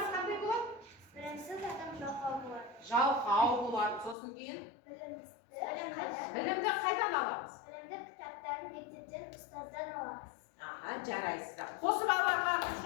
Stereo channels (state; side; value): drops out; right; at 4.2 s